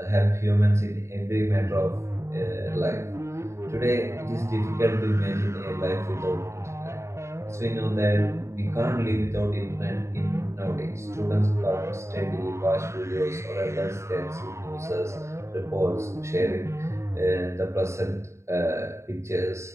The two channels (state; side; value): late; left; 0.14 ms